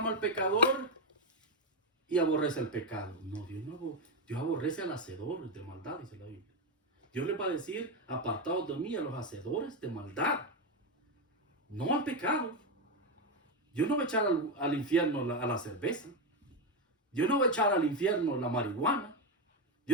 al pecador y aborrece el pecado. No, Dios aborrece al hacedor de maldad, dice la Biblia. Dios le va a decir, apartados de mí a los hacedores de maldad, no al pecado. Dios no va a echar al infierno a la cerveza. Dios no va a echar al infierno la marihuana.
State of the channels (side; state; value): both; normal; correlation 0.09